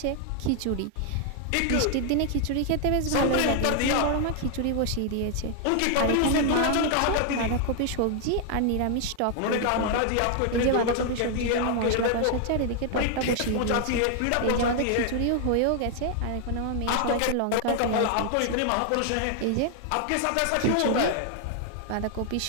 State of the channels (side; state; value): both; different; correlation 0.00